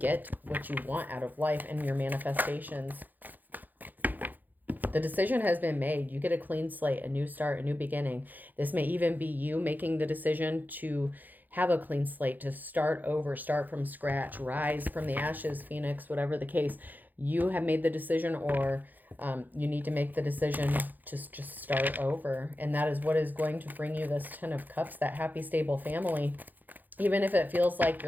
what you want out of life and your manifestations. The decision has been made. You get a clean slate, a new start, a new beginning. This may even be you making the decision to have a clean slate, to start over, start from scratch, rise from the ashes, Phoenix, whatever the case. You have made the decision, or you need to make the decision to just start over. And that is what is going to bring you this Ten of Cups, that happy, stable family. Even if it feels like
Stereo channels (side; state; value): left; late; 0.085 ms